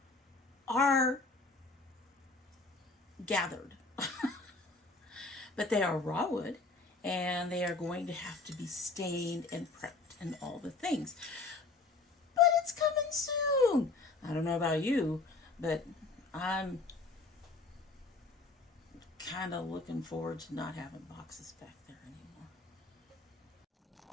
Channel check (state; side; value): quieter; right; 3.7 dB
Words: are gathered. But they are raw wood, and they are going to have to be stained and prepped and all the things. But it's coming soon. I don't know about you, but I'm kind of looking forward to not having boxes back there anymore.